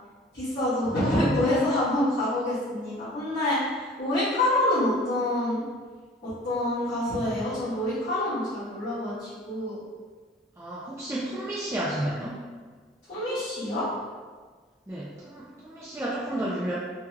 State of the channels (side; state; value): both; normal; correlation 0.47